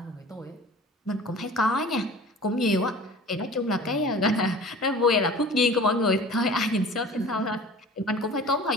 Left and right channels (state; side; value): normal; both; correlation 0.42